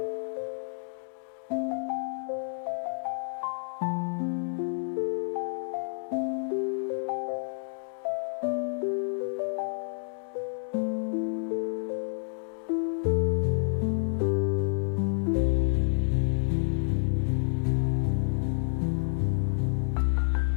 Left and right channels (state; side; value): silent; right; digital silence